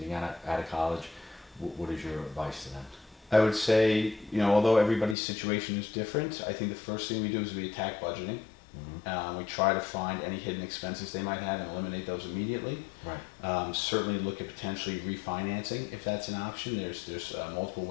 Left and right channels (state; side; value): drops out; right; at 5.2 s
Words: out of college. What is your advice to them? I would say, although everybody's situation is different, I think the first thing we do is we attack budgeting. We try to find any hidden expenses they might have and eliminate those immediately. Right. Certainly look at potentially refinancing if that's an option. There's multiple